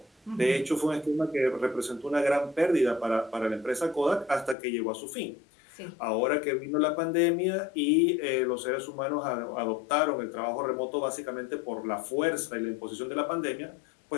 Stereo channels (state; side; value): drops out; right; at 4.5 s